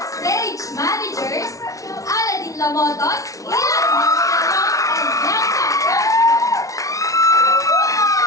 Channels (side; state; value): right; late; 0.16 ms